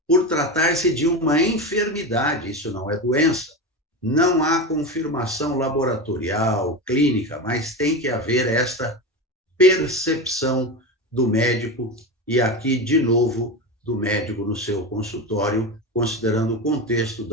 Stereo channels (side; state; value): both; normal; correlation 0.21